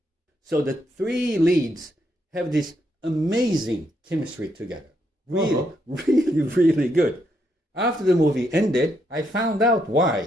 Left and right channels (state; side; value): normal; both; correlation 0.77